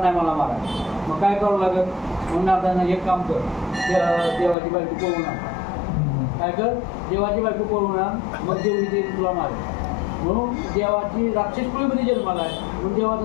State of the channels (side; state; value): right; drops out; at 4.5 s